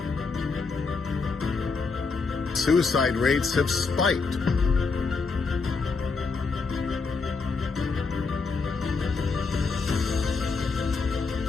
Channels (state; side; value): quieter; right; 4.5 dB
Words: suicide rates have spiked.